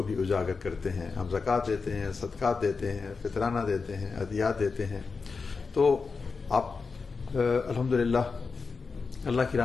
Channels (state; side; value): quieter; right; 4.7 dB